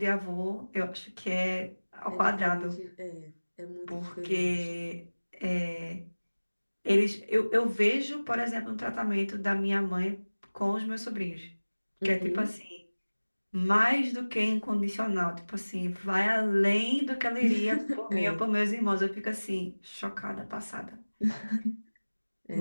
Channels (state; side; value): inverted; both; correlation -1.00